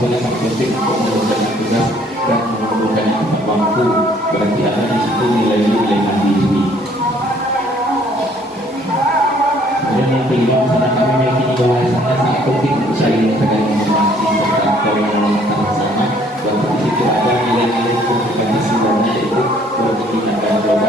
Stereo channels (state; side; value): normal; both; correlation 0.61